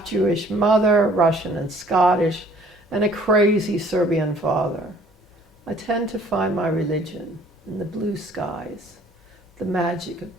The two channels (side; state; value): both; normal; correlation 0.56